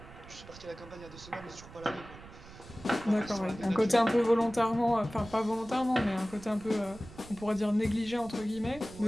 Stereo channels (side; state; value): right; noise; rumble, 18 dB below the sound